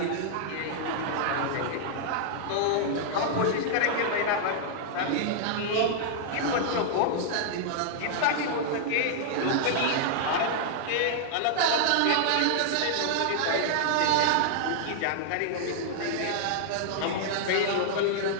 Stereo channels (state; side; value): different; both; correlation -0.01